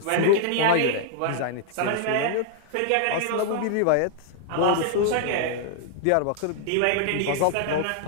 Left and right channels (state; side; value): different; both; correlation 0.00